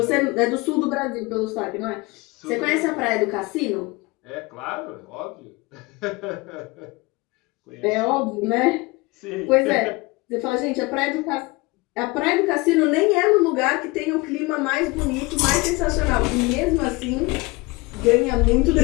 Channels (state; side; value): quieter; right; 24.2 dB